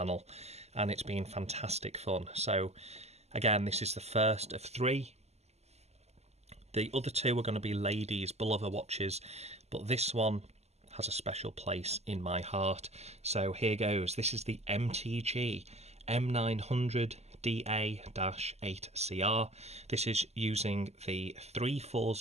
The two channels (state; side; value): late; left; 0.31 ms